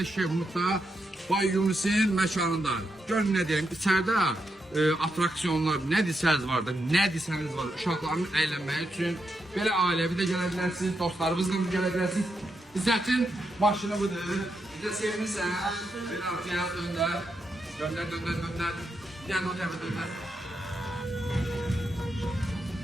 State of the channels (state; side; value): normal; both; correlation 0.84